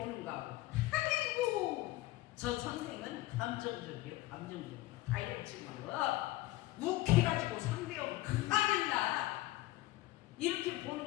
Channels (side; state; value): right; quieter; 17.9 dB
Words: 아이고 저 선생은 감정적이요, 감정적이요, 다혈질이요, 욱해가지고 상대하고 큰일 나, 이렇게